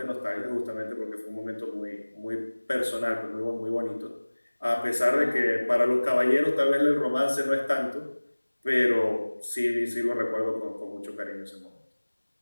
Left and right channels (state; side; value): inverted; both; correlation -1.00